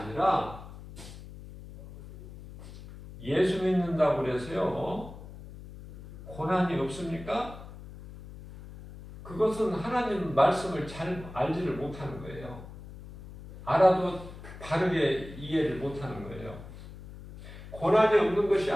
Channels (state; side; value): noise; left; hum, 15 dB below the sound